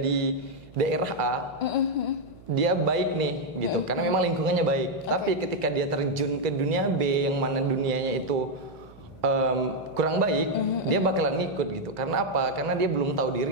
daerah A, dia baik nih gitu, karena memang lingkungannya baik. Tapi ketika dia terjun ke dunia B yang mana dunianya itu kurang baik, dia bakalan ngikut gitu. Karena apa? Karena dia belum tahu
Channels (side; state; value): right; noise; hum, 22 dB below the sound